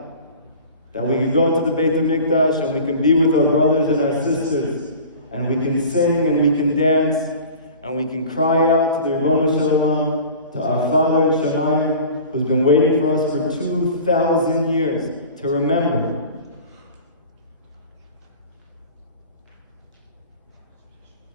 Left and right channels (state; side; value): inverted; both; correlation -0.41